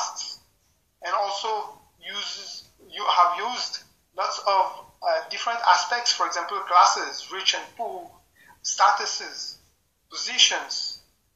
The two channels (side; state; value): both; identical; correlation 1.00